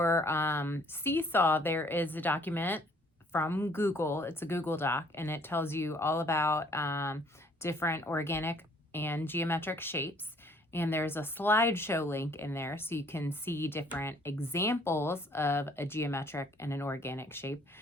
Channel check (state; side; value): normal; both; correlation 0.60